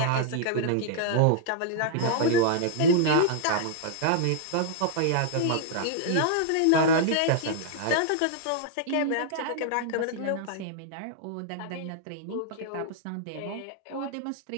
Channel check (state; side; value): different; both; correlation -0.01